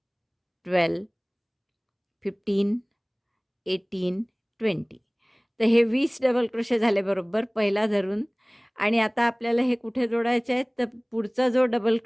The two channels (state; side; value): identical; both; correlation 1.00